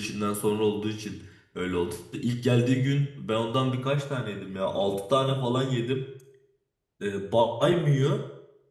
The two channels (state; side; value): identical; both; correlation 1.00